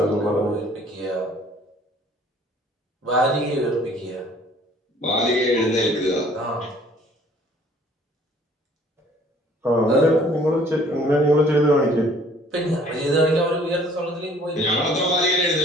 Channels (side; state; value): both; normal; correlation 0.56